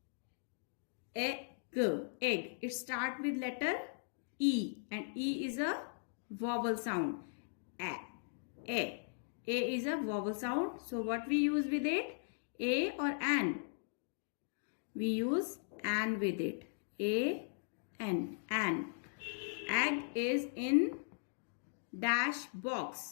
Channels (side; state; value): right; silent; digital silence